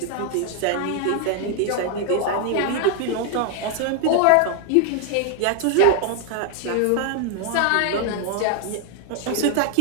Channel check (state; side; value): different; both; correlation 0.01